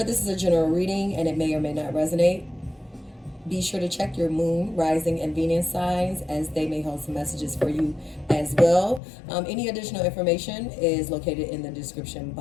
this is a general reading and it may or may not resonate. Be sure to check your moon, rising, and Venus signs as they may hold some messages for you as well. Any additional information is located in the description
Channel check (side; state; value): right; drops out; at 9.0 s